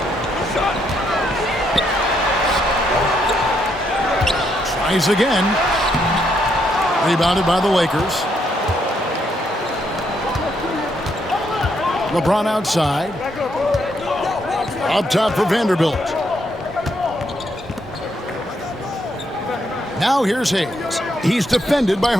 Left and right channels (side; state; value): both; normal; correlation 0.75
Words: Tries again. Rebounded by the Lakers. LeBron outside. Up top for Vanderbilt. Now here's Hayes. He's defended by